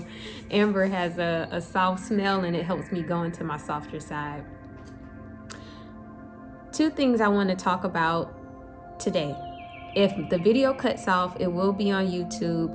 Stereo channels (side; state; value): both; identical; correlation 1.00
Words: amber has a soft smell, and it helps me go into my softer side. Two things I want to talk about today. If the video cuts off, it will be on